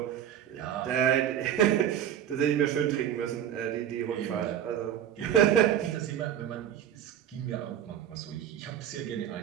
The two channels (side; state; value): left; quieter; 10.2 dB